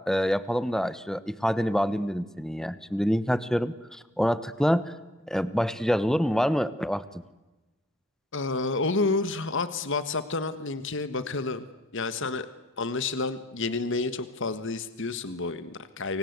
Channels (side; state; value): both; normal; correlation 0.64